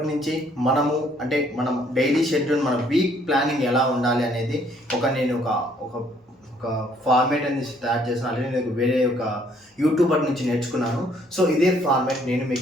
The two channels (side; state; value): both; normal; correlation 0.64